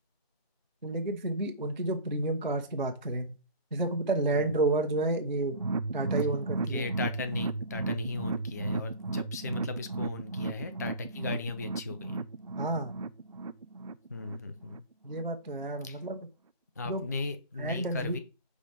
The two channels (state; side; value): inverted; both; correlation -0.37